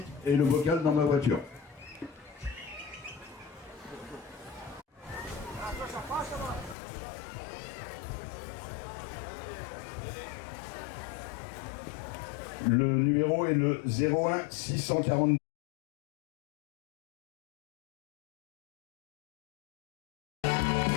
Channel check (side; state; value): right; drops out; at 6.8 s